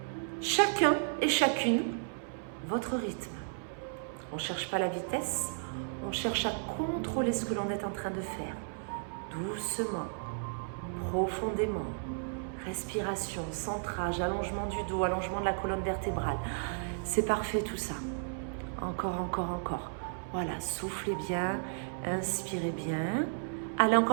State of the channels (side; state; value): left; silent; 55 dB below the other